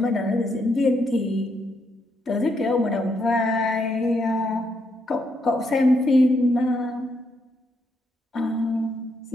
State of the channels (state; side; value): normal; both; correlation 0.77